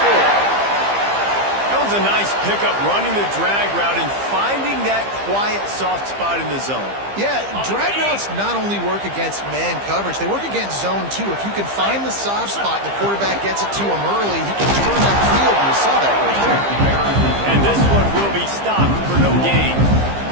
That was a nice pickup, running the drag route and finding that quiet, soft spot in the zone. Yeah, drag routes not only work against man coverage, they work against zone too. If you can find the soft spot and the quarterback gets it to him early, he can turn that field, and you saw that right there. And this one will be stopped for no gain.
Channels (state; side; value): late; left; 15 ms